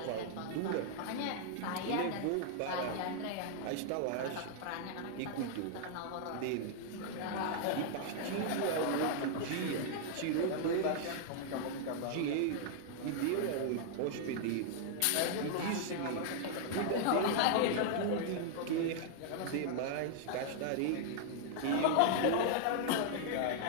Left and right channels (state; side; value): different; both; correlation -0.01